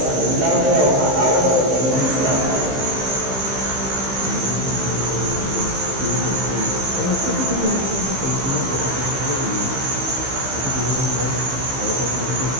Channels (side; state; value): left; late; 15 ms